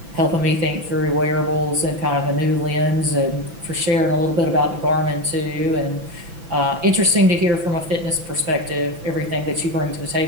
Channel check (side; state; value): left; late; 6.0 ms